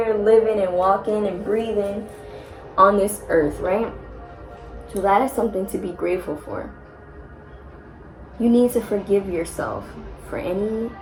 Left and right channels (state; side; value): identical; both; correlation 1.00